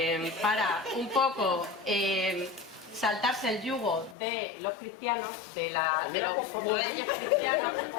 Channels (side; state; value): right; drops out; at 4.2 s